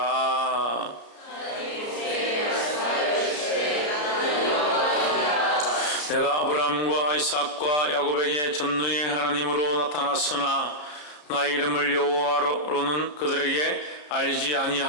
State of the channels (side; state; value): right; late; 33 ms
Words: 내가 아브라함과 이삭과 야곱에게 전능의 하나님으로 나타났으나 나의 이름을 여호와로는 그들에게 알리지